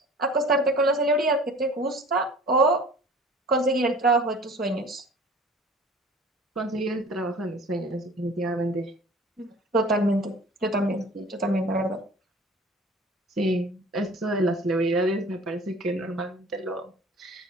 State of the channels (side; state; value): both; normal; correlation 0.45